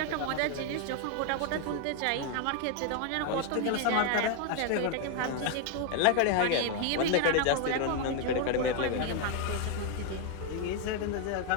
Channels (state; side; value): different; both; correlation 0.01